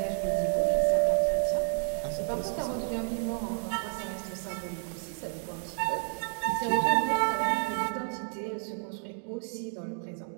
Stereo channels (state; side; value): silent; left; 57 dB below the other